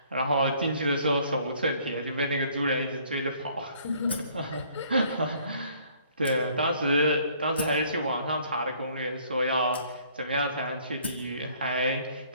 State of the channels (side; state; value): both; inverted; correlation -0.60